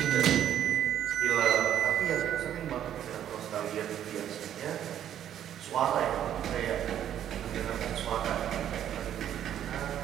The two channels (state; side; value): quieter; left; 10.5 dB